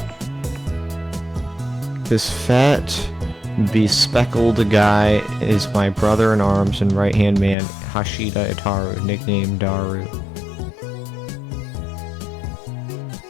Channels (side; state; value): right; drops out; at 7.6 s